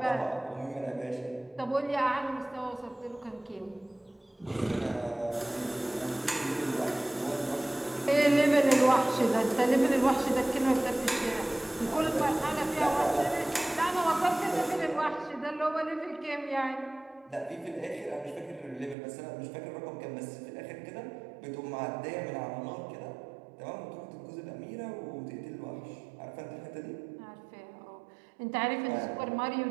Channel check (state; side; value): drops out; left; at 18.9 s